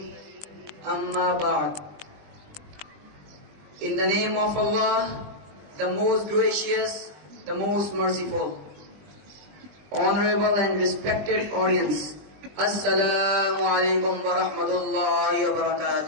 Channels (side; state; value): left; late; 20 ms